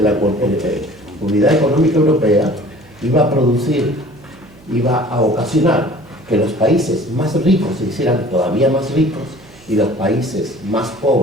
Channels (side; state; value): right; noise; hum, 26 dB below the sound